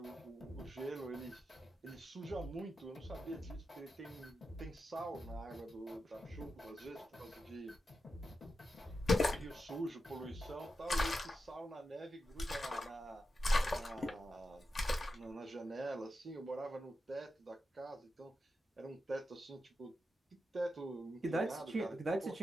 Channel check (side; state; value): both; normal; correlation 0.89